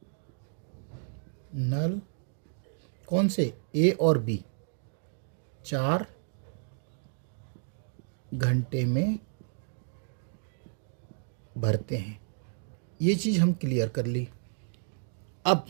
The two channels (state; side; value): silent; left; digital silence